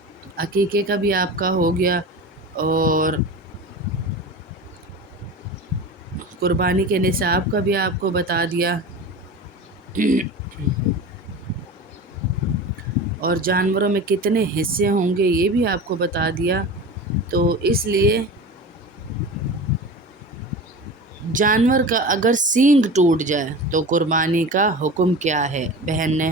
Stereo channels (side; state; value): both; normal; correlation 0.32